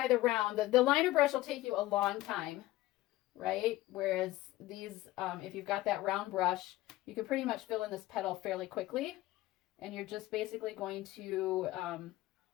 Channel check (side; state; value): right; quieter; 16.9 dB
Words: the round, the liner brush will take you a long time, right? Whereas these, if you've got that round brush, you can pretty much fill in this petal fairly quickly. And you're just basically going to